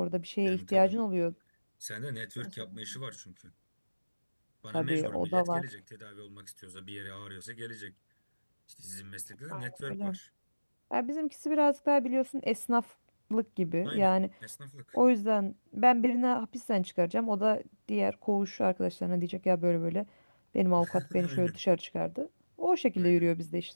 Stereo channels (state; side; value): inverted; both; correlation -1.00